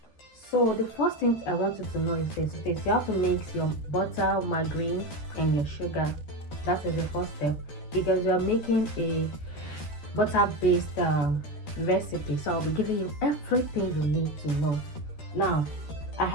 So the first thing I want you to know is this: you have to mix your butter, margarine, and your sugar. That is the first step because you are making a butter-based recipe. So I'll be giving you everything you need to know. Now, I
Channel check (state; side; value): late; right; 13 ms